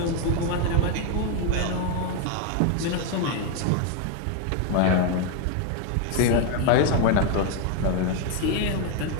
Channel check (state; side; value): different; both; correlation 0.01